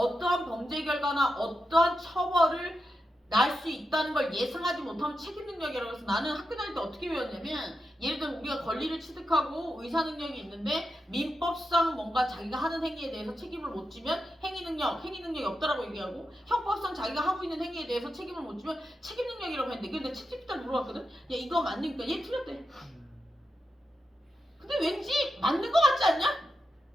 범죄 결과나 어떠한 처벌을 날 수 있다는 걸 예상하지 못하면 책임 능력이라고 해서 나는 학교 다닐 때 어떻게 배웠냐면 예를 들어 우리가 권리를 취득하고 의사 능력이 있는데 민법상 뭔가 자기가 하는 행위에 대해서 책임을 못 지면 행위 능력이 없다라고 얘기하고 형법상 자기가 하고 있는 행위에 대해서 책임을 못 지면 책임 능력이라고 했는데 근데 챗GPT한테 물어봤거든. 야 이거 맞니까 얘 틀렸대. 근데 왠지 맞는 것 같지 않냐?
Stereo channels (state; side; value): normal; both; correlation 0.88